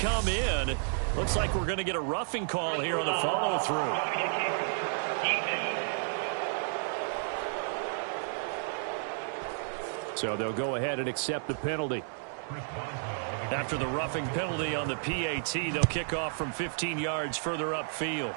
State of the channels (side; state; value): left; silent; digital silence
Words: in. Looks like we're going to get a roughing call here on the follow-through. So they'll go ahead and accept the penalty. After the roughing penalty on the PAT, they'll kick off from 15 yards further upfield.